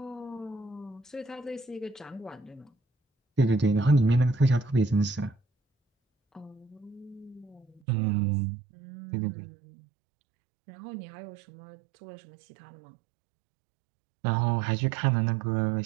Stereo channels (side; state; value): left; drops out; at 7.8 s